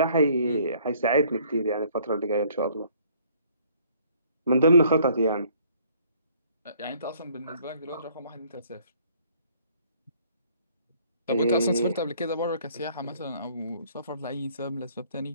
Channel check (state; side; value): inverted; both; correlation -0.59